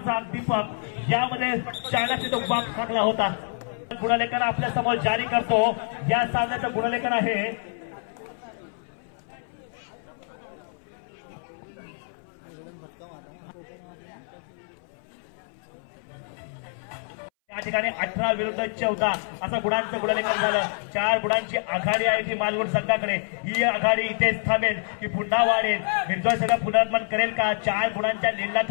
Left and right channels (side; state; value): right; silent; 60 dB below the other